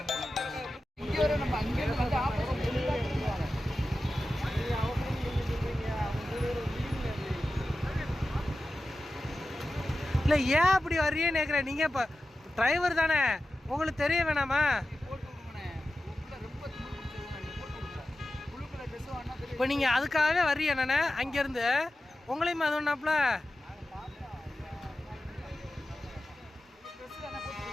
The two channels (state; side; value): normal; both; correlation 0.94